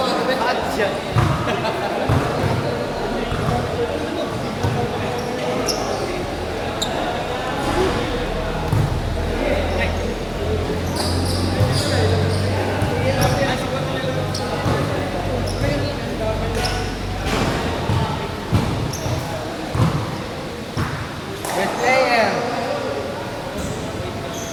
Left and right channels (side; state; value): both; identical; correlation 1.00